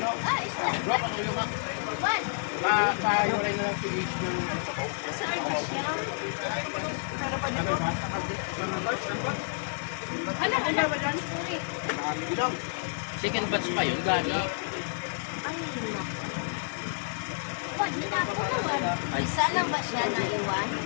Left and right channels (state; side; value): silent; right; digital silence